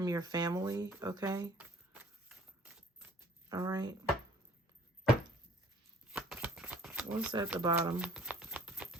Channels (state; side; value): normal; both; correlation 0.55